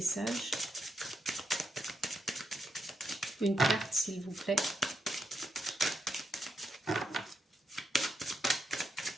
Une carte, s'il vous plaît.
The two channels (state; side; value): normal; both; correlation 0.82